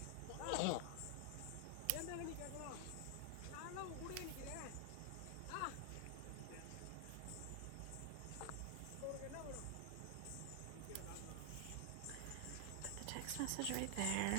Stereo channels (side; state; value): both; different; correlation 0.00